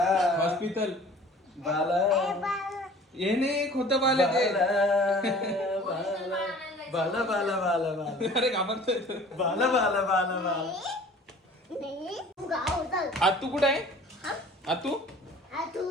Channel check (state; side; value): normal; both; correlation 0.47